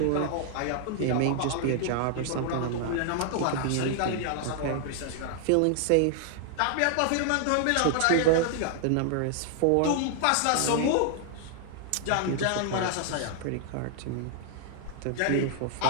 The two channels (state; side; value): different; both; correlation 0.00